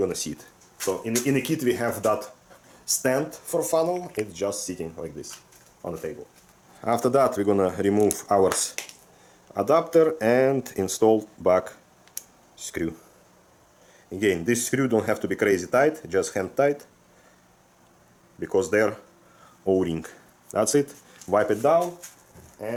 see it. So in the kit we have that stand for funnel, it's just sitting like this on the table. After that, we're gonna remove our adapter and install back screw. Again, this screw don't have to be crazy tight, just hand tight, because they're O-ring. That's it. Wipe it down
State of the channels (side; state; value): both; identical; correlation 1.00